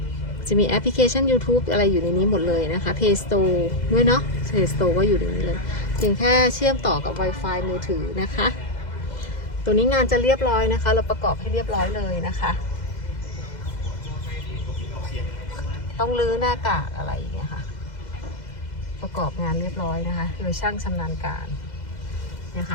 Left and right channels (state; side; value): late; right; 2.0 ms